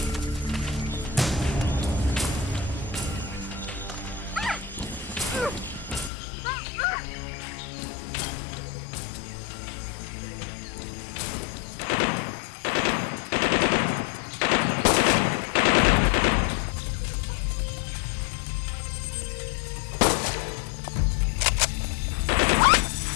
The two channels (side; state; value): right; drops out; at 6.1 s